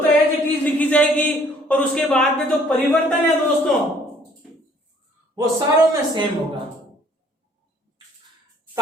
एज इट इज लिखी जाएगी, और उसके बाद में जो परिवर्तन है दोस्तों वो सारों में सेम होगा।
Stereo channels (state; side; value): normal; both; correlation 0.59